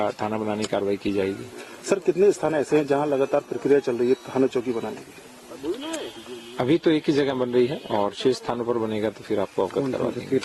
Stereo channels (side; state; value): both; identical; correlation 1.00